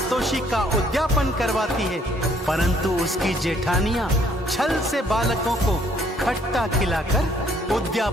का उद्यापन करवाती है, परंतु उसकी जेठानियां छल से बालकों को खट्टा खिलाकर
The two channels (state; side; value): normal; both; correlation 0.65